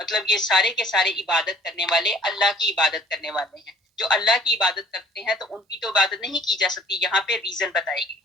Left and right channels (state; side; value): normal; both; correlation 0.52